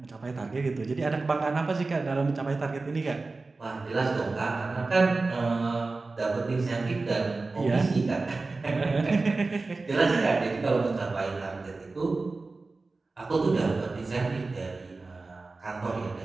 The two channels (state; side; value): quieter; left; 3.6 dB